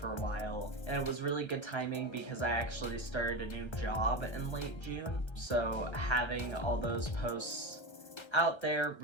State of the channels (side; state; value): right; late; 1.3 ms